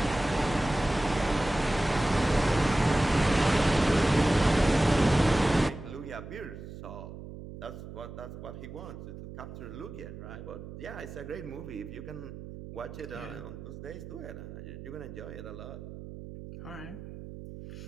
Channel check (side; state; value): right; noise; hum, 12 dB below the sound